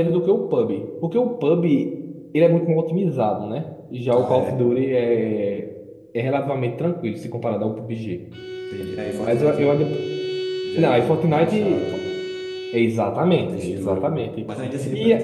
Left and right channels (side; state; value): both; identical; correlation 1.00